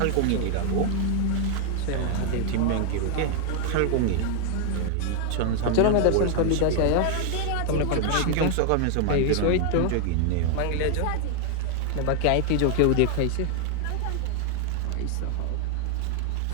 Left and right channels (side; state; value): both; different; correlation 0.00